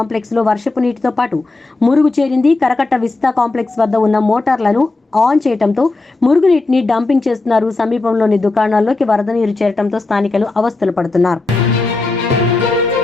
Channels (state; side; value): quieter; right; 3.3 dB